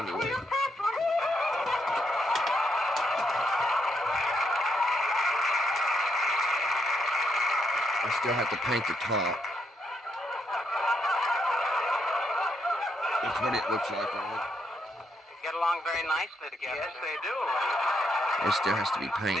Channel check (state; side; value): normal; both; correlation 0.78